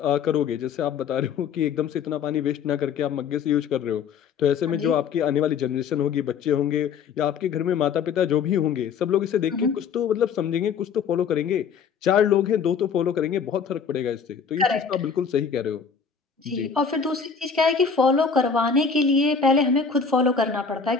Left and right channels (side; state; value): right; quieter; 6.2 dB